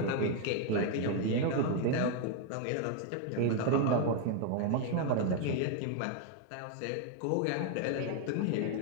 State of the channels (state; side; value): different; both; correlation 0.01